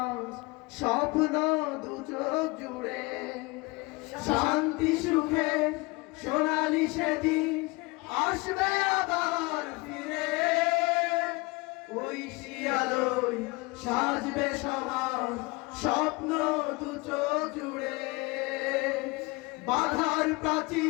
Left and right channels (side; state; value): right; quieter; 25.1 dB